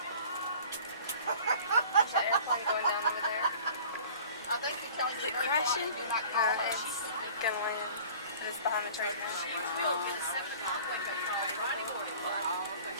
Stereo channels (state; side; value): inverted; both; correlation -0.46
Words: There's an airplane going down over there. I think you're telling Is me it very crashing? quiet. You're not calling her. It's gonna land. It's behind the train.